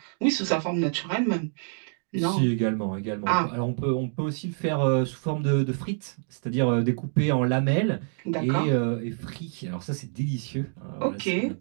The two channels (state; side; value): silent; left; 60 dB below the other